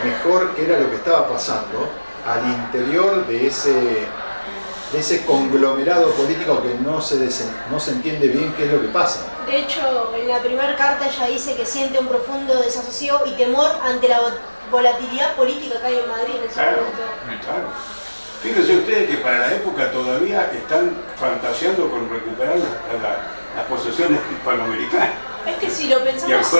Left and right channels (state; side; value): inverted; both; correlation -1.00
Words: mejor qué era lo que estaba pasando al interior de ese conglomerado político que no se entiende bien qué es lo que pasa. De hecho, en la primera carta ella dice que siente un profundo desasosiego y temor ante la volatilidad política que hay en Madrid en ese Claro, momento. claro. Fíjense ustedes que para la época todavía están fantaseando con recuperar las posesiones hispanoamericanas, Es que si lo de pensamos,